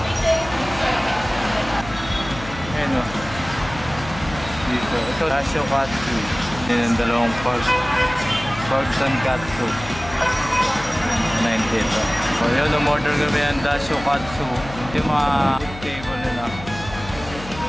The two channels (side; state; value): left; noise; hum, 14 dB below the sound